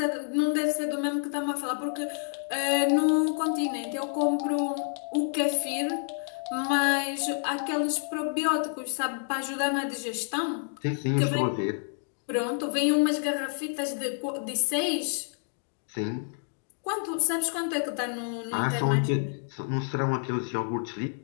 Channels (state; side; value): silent; right; 59 dB below the other